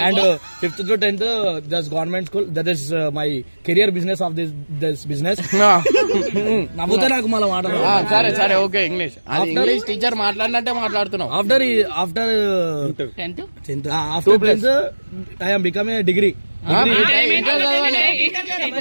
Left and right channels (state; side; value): inverted; both; correlation -1.00